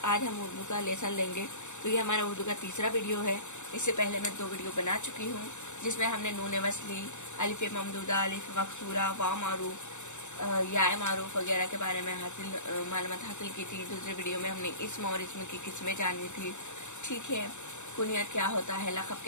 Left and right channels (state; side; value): late; right; 0.84 ms